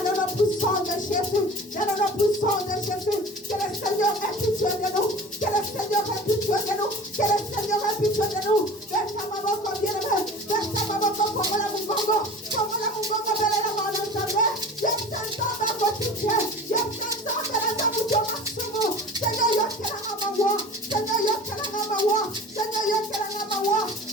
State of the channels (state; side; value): normal; both; correlation 0.39